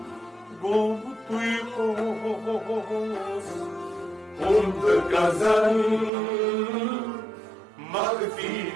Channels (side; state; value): left; drops out; at 6.1 s